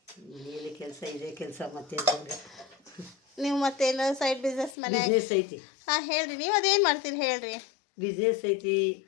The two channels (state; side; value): drops out; right; at 4.8 s